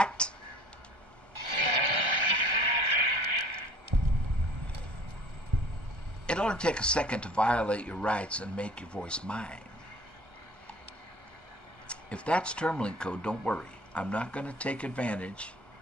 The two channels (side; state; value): left; late; 1.3 ms